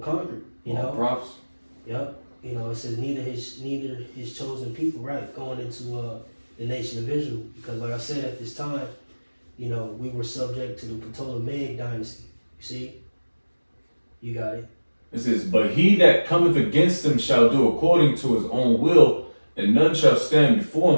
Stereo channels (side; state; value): both; inverted; correlation -1.00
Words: conquered. Prophets. Yep. You know, it says neither his chosen people, right, going into the nation of Israel, because like I said, at this time, you know, we were subject to the Ptolemaic dynasty. You see, you got it. It says, but he that cometh against them shall do according to his own will, and none shall stand before